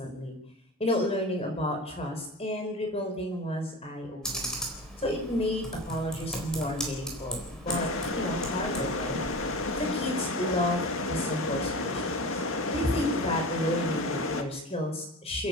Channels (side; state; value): both; normal; correlation 0.32